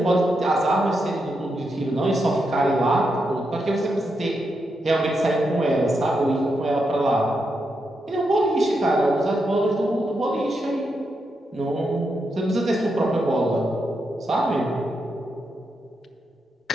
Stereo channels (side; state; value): both; normal; correlation 0.84